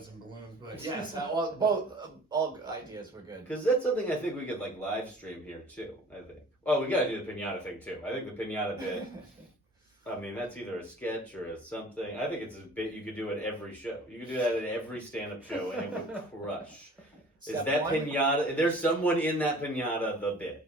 and balloons, but yes, all ideas were good. Because that's something I think we could, like, live stream here, too, I think. Oh, we gotta do the pinata thing, too. I think the pinata bit, I mean, that's either a sketch or a something. I think it's a bit you could do at every show. You could do that at every stand-up show, and it would crush. Step Is that one? pinata? There's someone in that pinata. The bit.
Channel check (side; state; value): both; normal; correlation 0.48